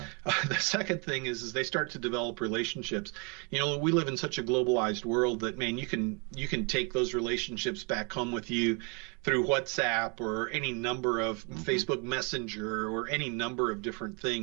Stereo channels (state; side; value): quieter; left; 33.7 dB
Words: The second thing is they start to develop relationships. You know, we live in such a globalized world that, man, you can take those relationships back home with you through WhatsApp or any number of Hmm. Facebook Messenger or any number of different